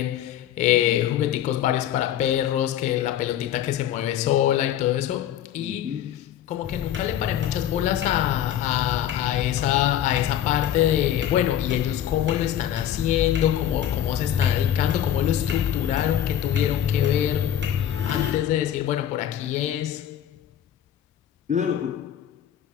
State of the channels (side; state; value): right; quieter; 11.0 dB